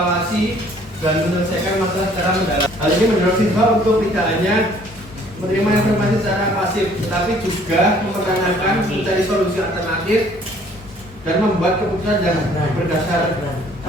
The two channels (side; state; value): both; normal; correlation 0.58